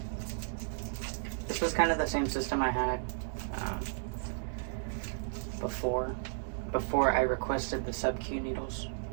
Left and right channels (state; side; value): silent; left; digital silence